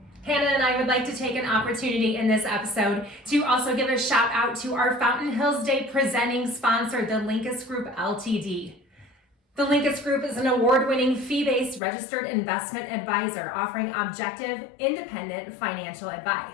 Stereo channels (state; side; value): drops out; right; at 11.8 s